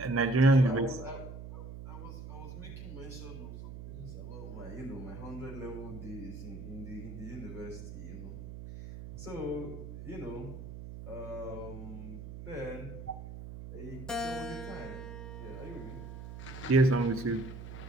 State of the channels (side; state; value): right; noise; hum, 10 dB below the sound